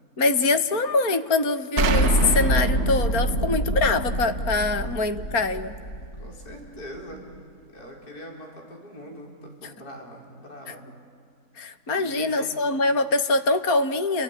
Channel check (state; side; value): late; right; 4.3 ms